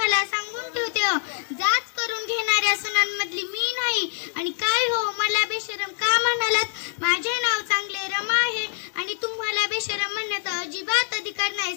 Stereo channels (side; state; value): right; silent; 62 dB below the other